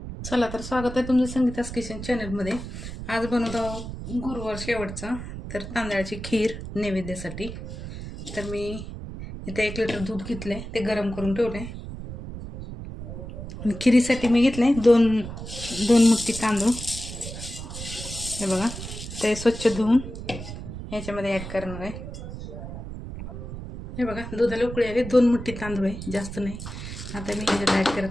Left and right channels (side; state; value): right; noise; rumble, 9 dB below the sound